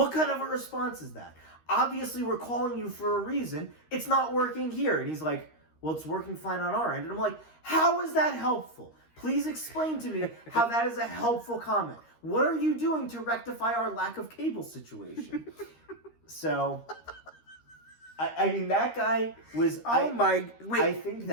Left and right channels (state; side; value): late; right; 13 ms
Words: kind of a response is that? Obviously, we're calling you for a reason. It's not working here. And he's like, well, it's working fine on our end. And I'm like, how is that helpful? Please explain to me how that is a helpful comment. What are you doing to rectify our lack of cable situation? So, I mean, that guy was... Wait, I think